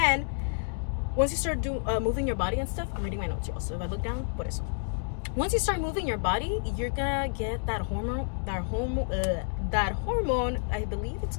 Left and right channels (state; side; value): silent; right; 58 dB below the other